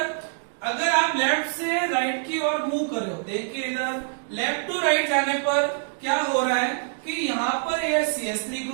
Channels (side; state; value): left; silent; digital silence